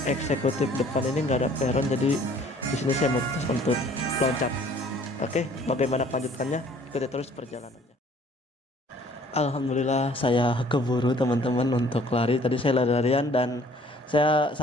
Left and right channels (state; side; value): normal; both; correlation 0.56